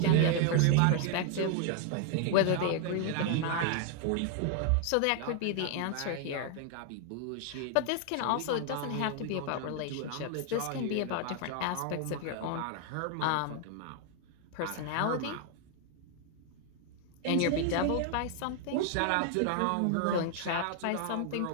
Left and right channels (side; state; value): both; different; correlation 0.00